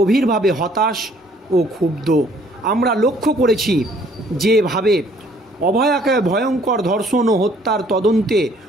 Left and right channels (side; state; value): both; normal; correlation 0.61